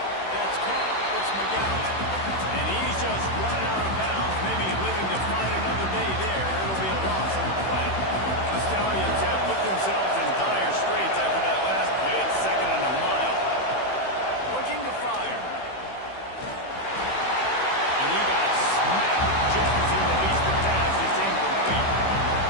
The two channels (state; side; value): late; right; 16 ms